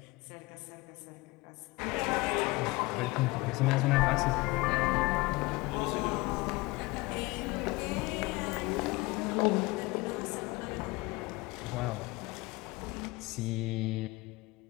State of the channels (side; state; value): right; quieter; 22.7 dB